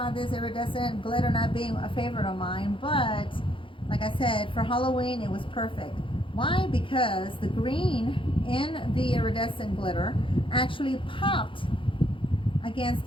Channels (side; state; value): right; late; 0.25 ms